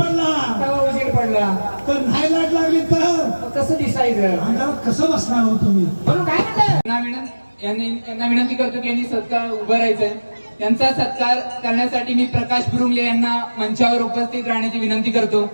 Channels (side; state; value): both; inverted; correlation -1.00